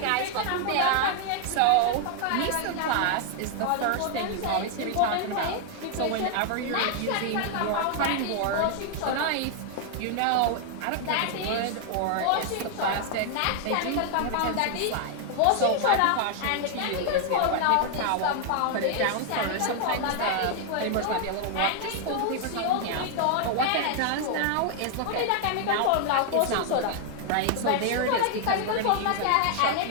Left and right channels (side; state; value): both; different; correlation 0.00